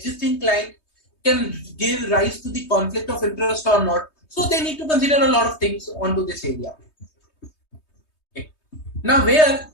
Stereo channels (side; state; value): right; late; 3.2 ms